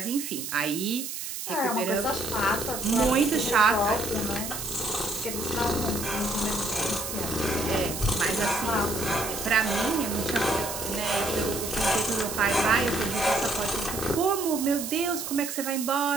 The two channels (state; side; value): noise; right; hiss, 6 dB below the sound